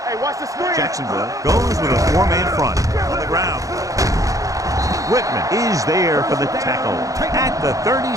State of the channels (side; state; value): left; late; 0.16 ms